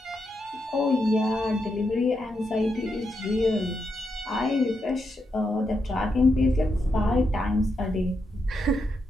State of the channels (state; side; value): normal; both; correlation 0.83